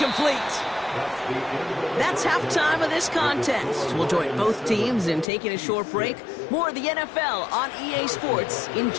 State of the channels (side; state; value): right; drops out; at 5.2 s